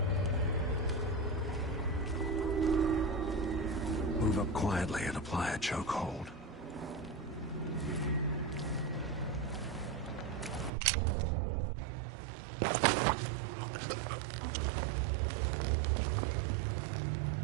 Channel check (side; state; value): left; drops out; at 10.7 s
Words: Move up quietly and apply a chokehold.